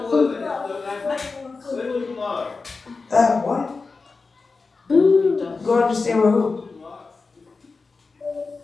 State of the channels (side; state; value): right; quieter; 4.2 dB